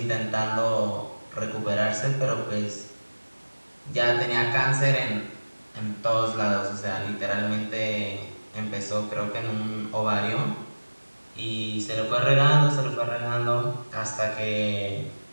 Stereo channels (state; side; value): inverted; both; correlation -1.00